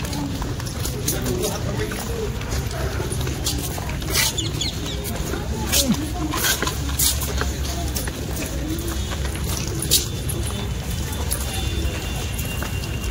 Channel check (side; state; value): both; identical; correlation 1.00